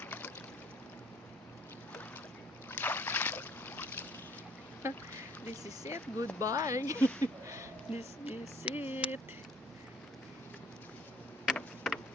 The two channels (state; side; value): normal; both; correlation 0.56